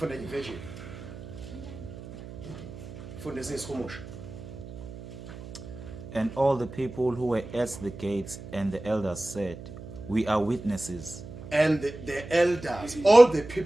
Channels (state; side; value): noise; right; hum, 13 dB below the sound